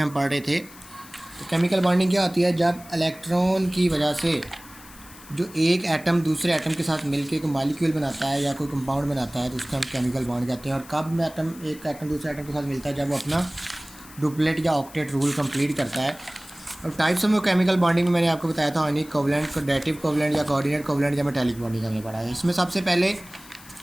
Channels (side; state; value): left; noise; hiss, 20 dB below the sound